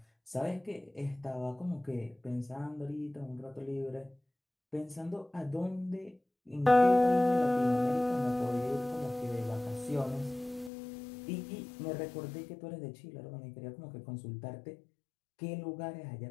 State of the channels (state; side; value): drops out; right; at 10.7 s